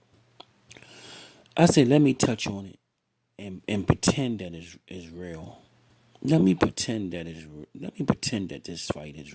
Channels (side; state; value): both; identical; correlation 1.00